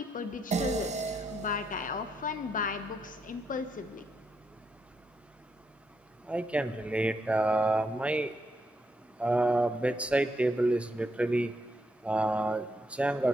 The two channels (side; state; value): both; normal; correlation 0.79